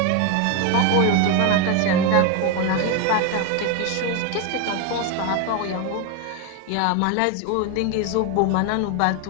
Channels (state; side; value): different; both; correlation 0.02